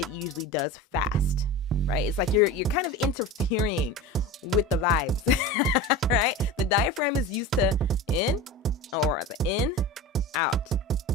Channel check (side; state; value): both; normal; correlation 0.31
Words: usually does fast, right? It's like you're kind of interfering with the vibes, right? The diaphragm is used to in, or the in, out,